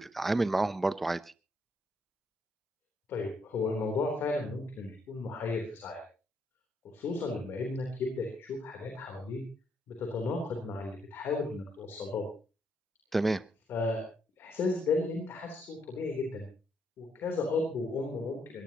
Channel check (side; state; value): both; normal; correlation 0.75